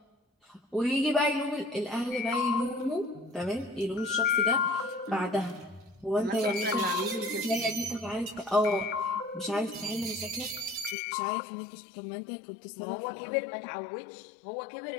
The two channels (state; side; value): drops out; right; at 11.0 s